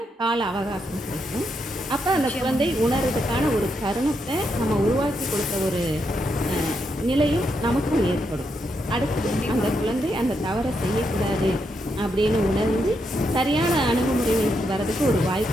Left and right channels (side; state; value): both; normal; correlation 0.81